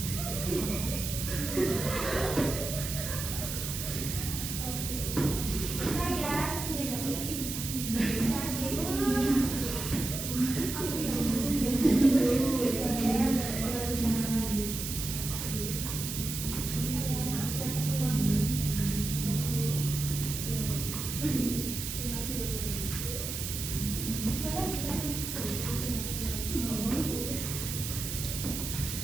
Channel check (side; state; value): right; noise; hiss, 5 dB below the sound